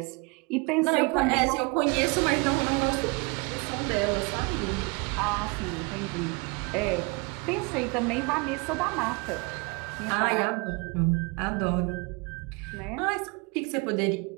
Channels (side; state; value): left; quieter; 29.4 dB